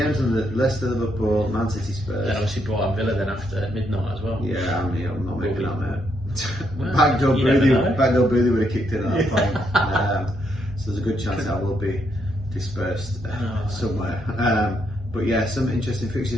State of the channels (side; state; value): both; normal; correlation 0.76